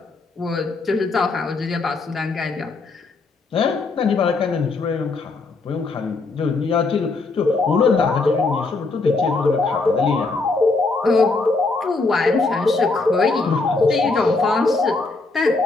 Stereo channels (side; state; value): right; quieter; 3.7 dB